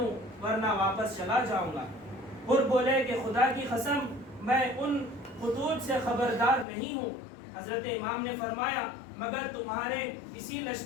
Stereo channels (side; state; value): right; drops out; at 6.7 s